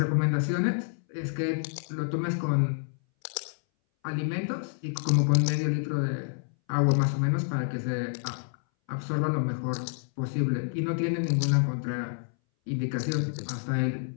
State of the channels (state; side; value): silent; right; 59 dB below the other